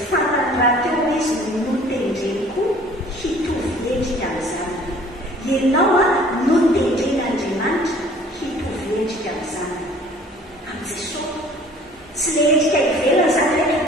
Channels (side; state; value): both; normal; correlation 0.52